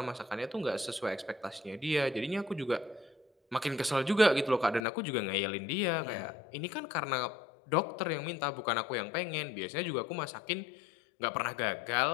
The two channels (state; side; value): drops out; right; at 4.8 s